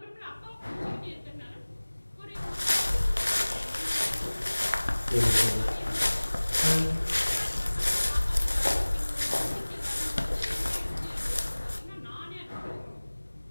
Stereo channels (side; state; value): both; inverted; correlation -1.00